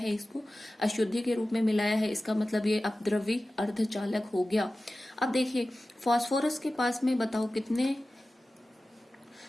इसको, अशुद्धि के रूप में मिलाया है, इसका मतलब ये अपद्रव्य अर्धचालक हो गया। अब देखिए फास्फोरस के पास में बताओ कितने?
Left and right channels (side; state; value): both; normal; correlation 0.95